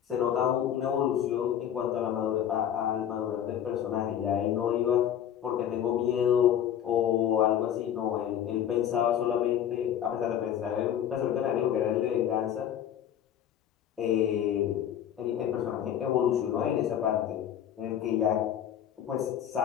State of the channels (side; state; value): right; quieter; 10.0 dB